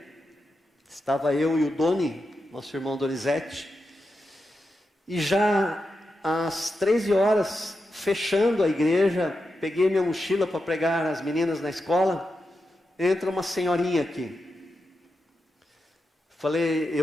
estava eu e o Doni, nosso irmão Donizete, e já às 13 horas, fechando a igreja, peguei minha mochila para pregar as meninas na escola, entra uma senhorinha aqui. Falei,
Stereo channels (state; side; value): normal; both; correlation 0.88